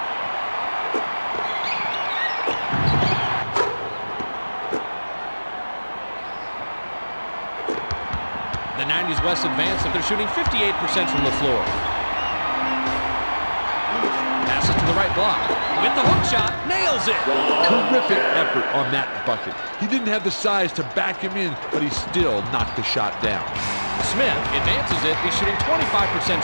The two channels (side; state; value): both; inverted; correlation -1.00